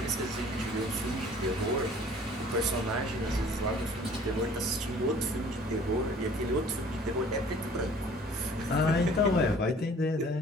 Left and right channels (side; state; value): both; normal; correlation 0.52